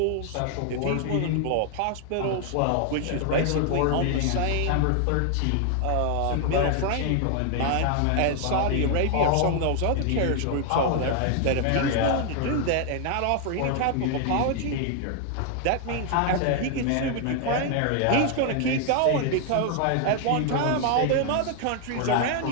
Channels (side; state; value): both; different; correlation 0.00